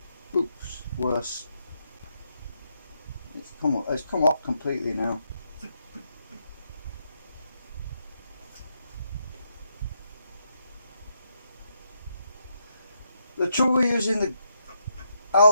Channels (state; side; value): inverted; both; correlation -0.80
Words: Oops, worse. It's come off completely now. The trouble with using the